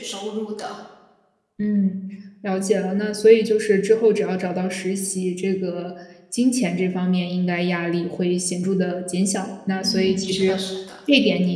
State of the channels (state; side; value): identical; both; correlation 1.00